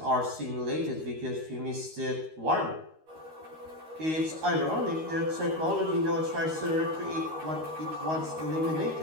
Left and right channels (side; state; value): left; late; 13 ms